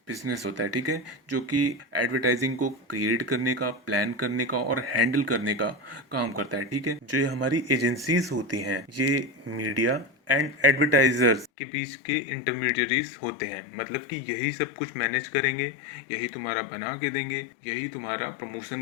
बिजनेस होता है, ठीक है, जो कि एडवर्टाइजिंग को क्रिएट करने का, प्लान करने का और हैंडल करने का काम करता है, ठीक है। जो ये हमारी एजेंसीज होती हैं ये मीडिया एंड एडवर्टाइजर्स के बीच के इंटरमीडियरीज होते हैं। मतलब कि यही सब कुछ मैनेज करेंगे, यही तुम्हारा बना के देंगे, यही तुम्हारा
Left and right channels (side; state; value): right; drops out; at 11.5 s